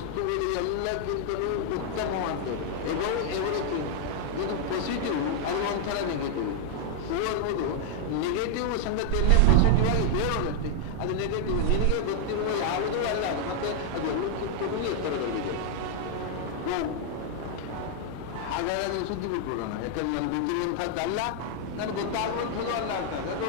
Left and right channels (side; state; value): both; different; correlation -0.01